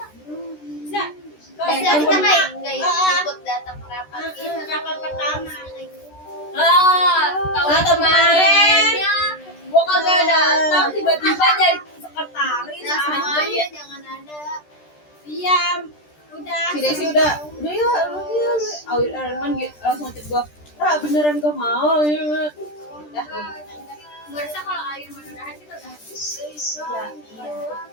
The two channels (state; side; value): late; right; 13 ms